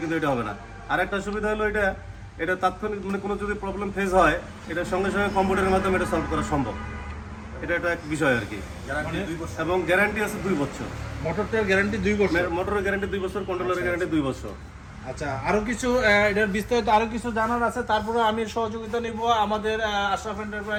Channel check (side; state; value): both; identical; correlation 1.00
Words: কিন্তু এটা হবে না। আর একটা সুবিধা হলো এটা তাৎক্ষণিক মানে কোনো যদি প্রবলেম ফেস হয় এটা সঙ্গে সঙ্গে কম্পিউটারের মাধ্যমে এটা সলভ করা সম্ভব। এটা এক বিষয় আর কি। এবং গ্যারান্টি আছে 2 বছর। মোটরটার গ্যারান্টি 2 বছর, মোটরের গ্যারান্টি 2 বছর, কন্ট্রোলারের গ্যারান্টি 2 বছর। আচ্ছা, আরো কিছু এটার বিস্তারিত আরো কিছু জানার আছে। তারপরে আমি সহযোগিতা নিব আমাদের আশরাফ